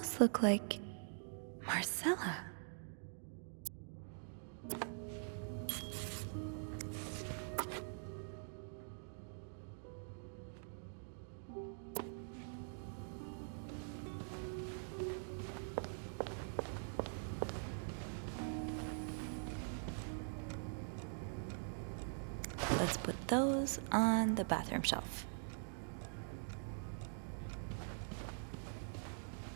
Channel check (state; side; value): silent; left; digital silence